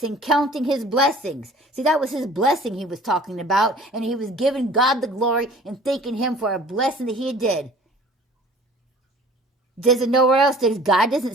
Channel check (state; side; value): normal; both; correlation 0.48